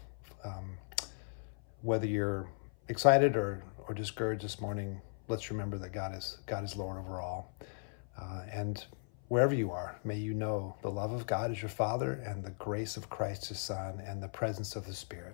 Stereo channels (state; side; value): silent; right; 53 dB below the other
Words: Whether you're excited or discouraged this morning, let's remember that God is Lord over all. And wherever you are, may you know the love of God as your Father, and the grace of Christ his Son, and the presence of the